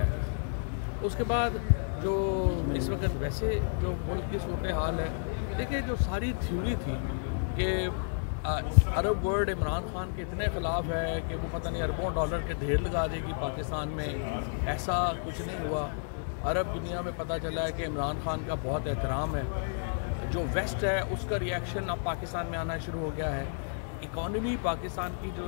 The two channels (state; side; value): silent; right; 57 dB below the other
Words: है। उसके बाद जो इस वक्त वैसे जो मुल्क की सूरत हाल है, देखिए जो सारी थ्योरी थी कि अरब वर्ल्ड इमरान खान के इतने ख़िलाफ़ है कि वो पता नहीं अरबों डॉलर के ढेर लगा देगी पाकिस्तान में, ऐसा कुछ नहीं हुआ। अरब दुनिया में पता चला है कि इमरान खान का बहुत एहतराम है। जो वेस्ट है उसका रिएक्शन अब पाकिस्तान में आना शुरू हो गया है। इकॉनमी पाकिस्तान की